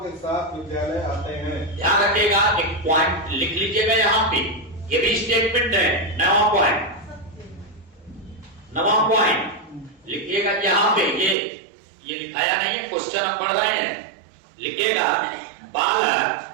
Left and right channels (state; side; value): drops out; left; at 11.4 s